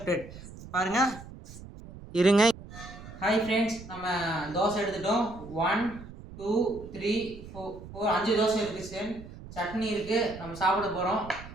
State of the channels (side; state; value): right; noise; rumble, 15 dB below the sound